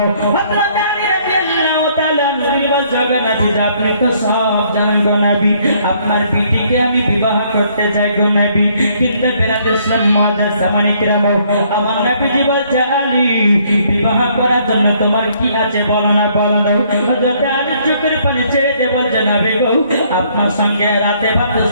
হযরত আলী রাদিয়াল্লাহু তাআলা নবী বলছেন নবী আপনি তো সব জানেন গো নবী, আপনার বিটিকে আমি বিবাহ করতে চাই গো নবী, কিন্তু বেরাদের সমাজের সামনে কেরাম আমার নবীজি বলছে আলী বিবাহ করার জন্য তোমার কি আছে বলো না বলো না। হযরত আলী চোখের পানি ছেড়ে দিয়ে বলছে নবী গো আপনার সঙ্গে রাতে ভাতে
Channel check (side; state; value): both; inverted; correlation -0.65